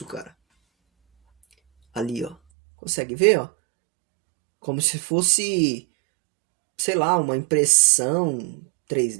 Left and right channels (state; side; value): drops out; left; at 2.4 s